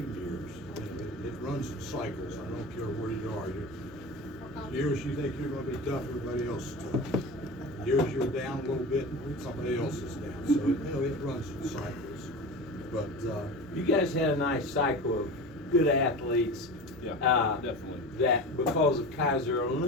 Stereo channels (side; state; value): both; normal; correlation 0.31